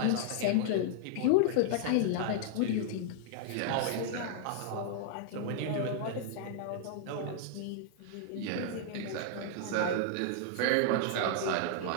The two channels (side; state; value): both; different; correlation -0.01